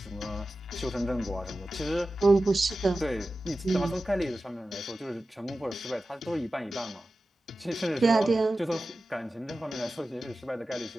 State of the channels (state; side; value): normal; both; correlation 0.94